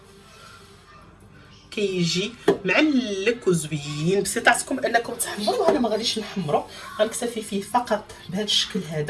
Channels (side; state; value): both; identical; correlation 1.00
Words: كيجي معلك وزوين، بسيطاتكم انكم تحمروا، انا ما غاديش نحمرو، غنكتفي فيه فقط بهذا الشكل